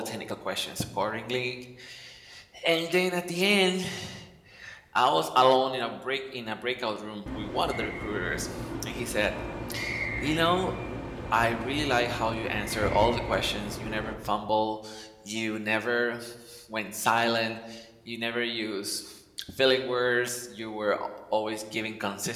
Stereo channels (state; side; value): identical; both; correlation 1.00